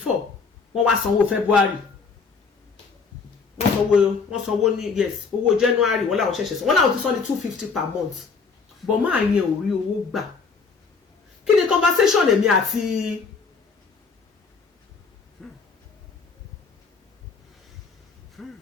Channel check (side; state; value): right; quieter; 5.0 dB